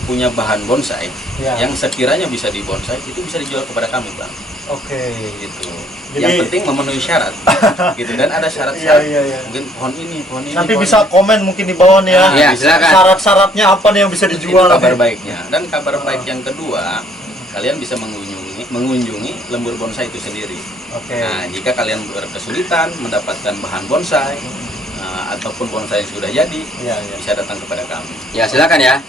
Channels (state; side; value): normal; both; correlation 0.62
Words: punya bahan bonsai Ya. yang sekiranya bisa dibonsai itu bisa dijual kepada kami, Bang. Oke. Gitu. Jadi- Yang penting memenuhi syarat. Gitu, dan ada Iya, syarat-syarat. iya, iya. Mungkin pohon ini. Nanti pohon bisa ini. komen mungkin di bawah nih ya. Iya, silakan. Syarat-syaratnya apa nih yang bisa Itu dijual? kabar nih? baiknya. Dan kabar baik yang kedua, kalian bisa mengunjungi lembur bonsai itu sendiri. Oke. Nah, jika kalian berkesulitan mendapatkan bahan bonsai ataupun bonsai yang sudah jadi, Iya, iya. bisa datang kepada kami. Ya silakan ya.